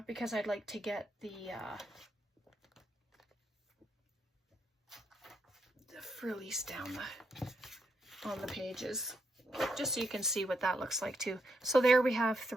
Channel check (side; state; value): both; normal; correlation 0.79